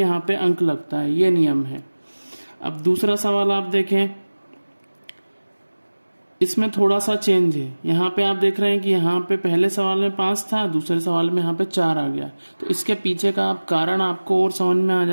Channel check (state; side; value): inverted; both; correlation -1.00